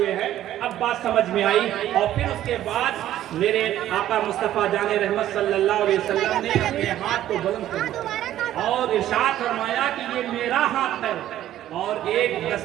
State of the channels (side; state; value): left; quieter; 12.7 dB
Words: ہیں۔ اب بات سمجھ میں آئی، اور پھر اس کے بعد میرے آقا مصطفیٰ جان رحمت صلی اللہ علیہ وسلم نے اپنے ہاتھ کو بلند کیا اور ارشاد فرمایا کہ یہ میرا ہاتھ ہے، اور ایک